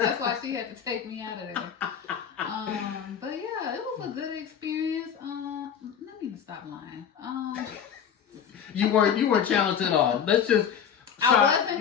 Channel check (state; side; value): quieter; right; 8.0 dB